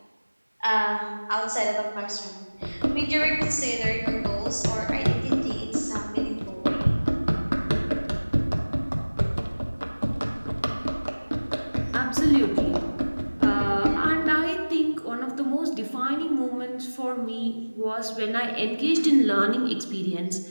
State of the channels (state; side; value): inverted; both; correlation -1.00